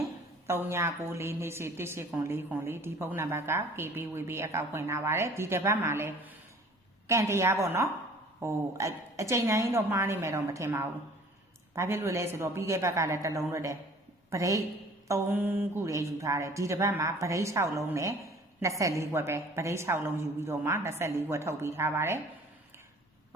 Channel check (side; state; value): both; normal; correlation 0.50